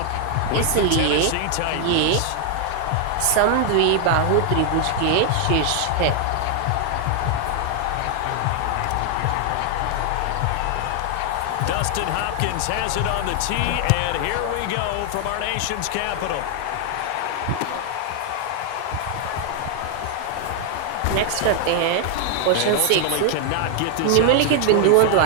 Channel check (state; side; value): different; both; correlation 0.00